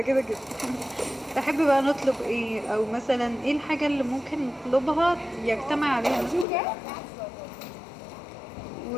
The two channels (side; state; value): right; drops out; at 6.5 s